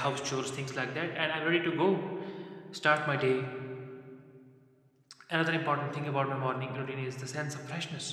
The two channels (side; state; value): both; identical; correlation 1.00